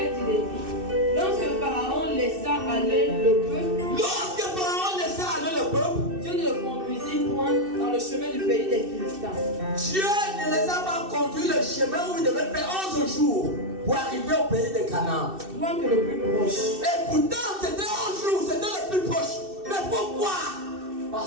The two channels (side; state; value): left; late; 2.6 ms